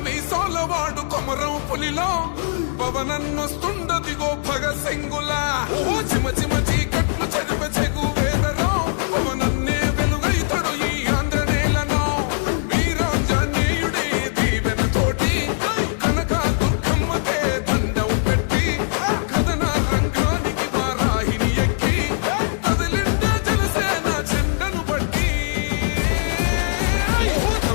మీసాల వాడు కొమరం పులిలో పవనన్నొస్తుండదిగో భగత్ సింగులా. ఓహో చిమ చిమ చీకట్లు చెరిపే చెగు వేదరో పవనన్నే వెలుగైతడు ఈ ఆంధ్ర నేలను. వీరాంజనేయుడి దీవెన తోటి కనక దుర్గమ్మకే దండం పెట్టి కథన రంగానికి వారాహిని ఎక్కి కదిలిండే జనసేన చెండను బట్టి.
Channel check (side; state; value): right; silent; 65 dB below the other